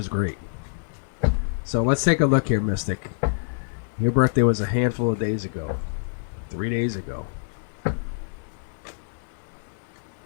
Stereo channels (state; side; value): silent; right; digital silence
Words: great. So let's take a look here, Mystic. Your birthday was a handful of days ago. 3 days ago.